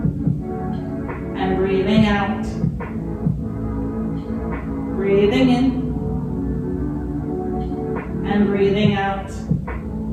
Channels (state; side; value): identical; both; correlation 1.00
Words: and breathing out. Breathing in and breathing out.